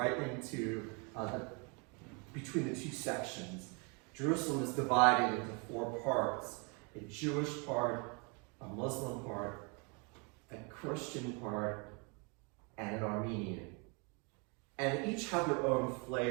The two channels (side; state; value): left; quieter; 33.1 dB